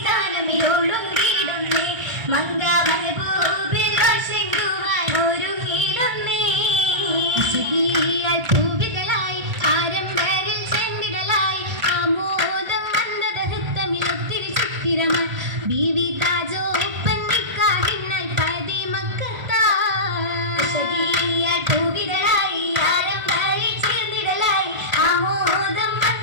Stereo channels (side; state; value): left; late; 1.4 ms